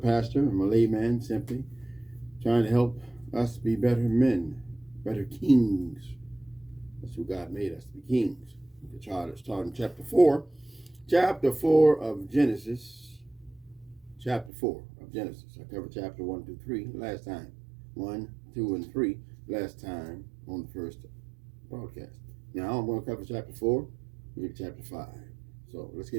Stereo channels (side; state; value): left; drops out; at 14.5 s